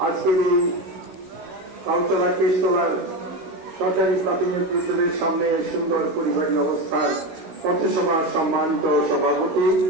আজকের এই কাউতলা কেশতলার সরকারি প্রাথমিক বিদ্যালয়ের সামনে সুন্দর পরিবারী অবস্থার পথসভার সম্মানিত সভাপতি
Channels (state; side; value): late; left; 16 ms